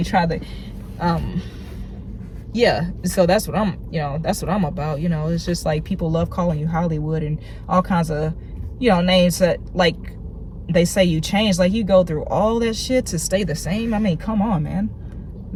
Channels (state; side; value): identical; both; correlation 1.00